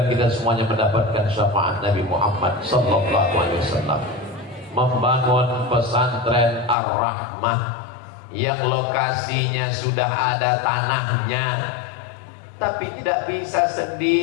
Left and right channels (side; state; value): right; drops out; at 6.8 s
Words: kita semuanya mendapatkan syafaat Nabi Muhammad sallallahu alaihi wasallam. Membangun pesantren Ar-Rahmah yang lokasinya sudah ada tanahnya, tapi tidak bisa